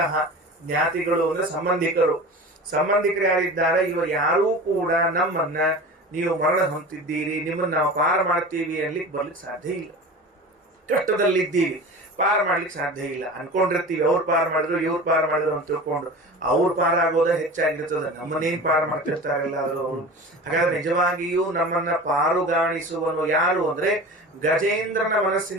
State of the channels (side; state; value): both; normal; correlation 0.34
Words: ಜ್ಞಾತಿಗಳು ಅಂದ್ರೆ ಸಂಬಂಧಿಕರು. ಸಂಬಂಧಿಕರು ಯಾರಿದ್ದಾರೆ, ಇವರು ಯಾರೂ ಕೂಡ ನಮ್ಮನ್ನ ನೀವು ಮರಣ ಹೊಂದಿದ್ದೀರಿ, ನಿಮ್ಮನ್ನ ನಾವು ಪಾರ ಮಾಡ್ತೀವಿ ಅನ್ಲಿಕ್ಕೆ ಬರ್ಲಿಕ್ಕೆ ಸಾಧ್ಯ ಇಲ್ಲ. ಕಷ್ಟದಲ್ಲಿದ್ದೀವಿ, ಪಾರ ಮಾಡ್ಲಿಕ್ಕೆ ಸಾಧ್ಯ ಇಲ್ಲ. ಅನ್ಕೊಂಡಿರ್ತೀವಿ ಅವ್ರು ಪಾರ ಮಾಡಿದ್ರು, ಇವ್ರು ಪಾರ ಮಾಡಿದ್ರು ಅಂತ ತಿಳ್ಕೊಂಡು ಅವ್ರು ಪಾರ ಆಗೋದ ಹೆಚ್ಚಾಗಿರ್ತದೆ, ನಮ್ಮನ್ನೇನ್ ಪಾರ ಮಾಡ್ತಿರ್ತಾರಲ್ಲ ಅವರು. ಹಾಗಾದ್ರೆ ನಿಜವಾಗಿಯೂ ನಮ್ಮನ್ನ ಪಾರುಗಾಣಿಸುವನು ಯಾರು ಅಂದ್ರೆ ಗಜೇಂದ್ರನ